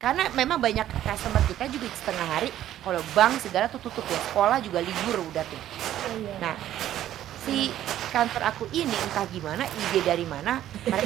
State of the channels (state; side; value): quieter; left; 12.3 dB